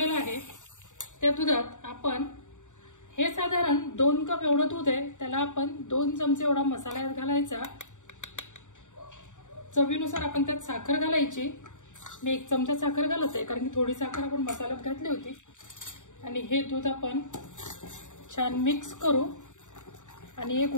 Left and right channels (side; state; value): right; late; 0.86 ms